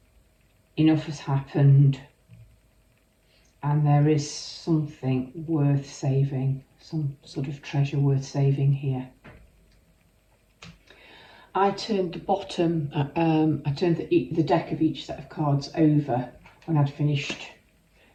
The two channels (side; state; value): both; identical; correlation 1.00